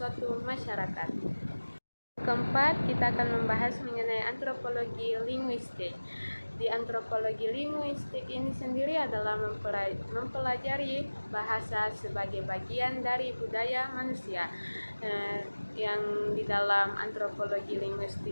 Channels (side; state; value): both; inverted; correlation -1.00